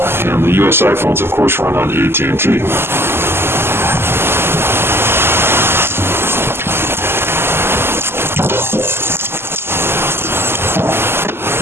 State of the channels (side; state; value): left; late; 0.12 ms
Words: and the US iPhones, of course, run on AT&T.